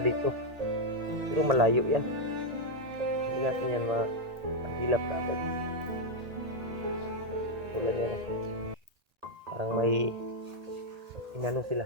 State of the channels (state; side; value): late; left; 1.8 ms